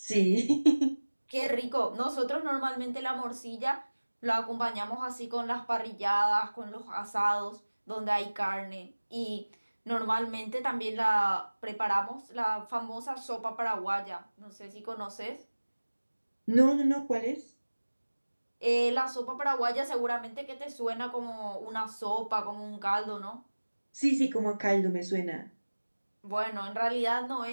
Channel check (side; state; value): both; inverted; correlation -1.00